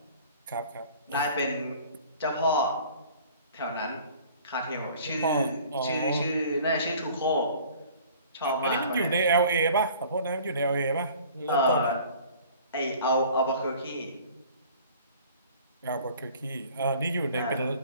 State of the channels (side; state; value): both; inverted; correlation -0.49